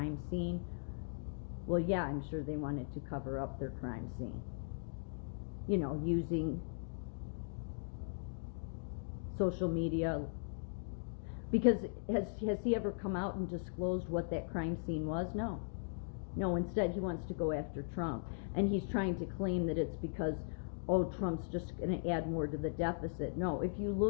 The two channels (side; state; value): right; silent; digital silence